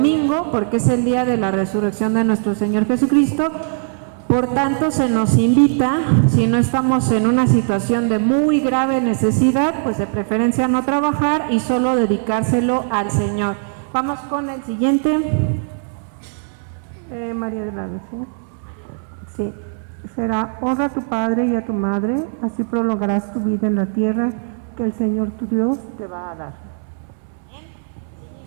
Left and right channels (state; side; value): silent; left; digital silence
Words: porque es el día de la resurrección de nuestro Señor Jesucristo. Por tanto, se nos invita, si no estamos en una situación de muy grave necesidad, pues de preferencia no trabajar y solo dedicárselo al Señor. Vamos con el siguiente. María de la Luz, ¿sí? Será: honra a tu padre y a tu madre, así prolongarás tu vida en la tierra que el Señor tu Dios te va a dar.